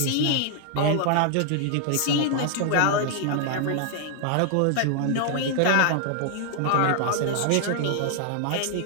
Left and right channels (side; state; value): both; different; correlation 0.00